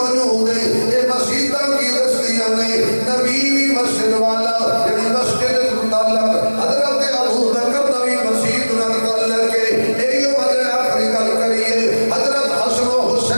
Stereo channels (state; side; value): inverted; both; correlation -1.00